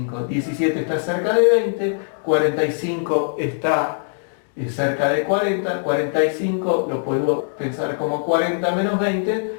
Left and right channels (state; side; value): silent; right; digital silence